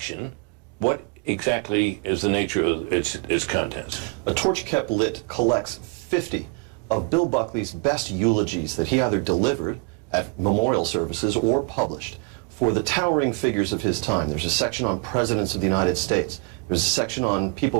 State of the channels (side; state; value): left; quieter; 31.2 dB